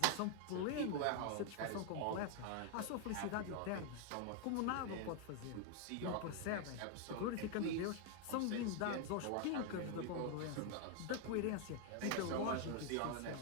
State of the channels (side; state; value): both; different; correlation 0.00